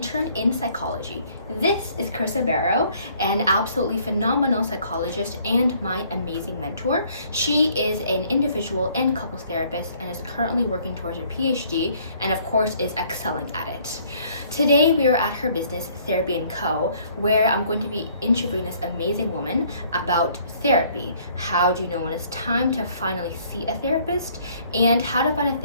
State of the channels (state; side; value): inverted; both; correlation -0.61